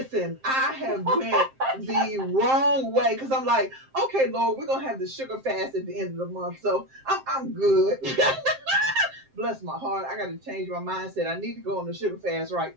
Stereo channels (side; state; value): left; late; 7.6 ms